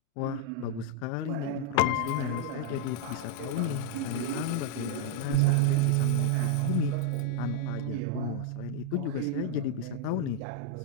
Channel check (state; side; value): different; both; correlation -0.01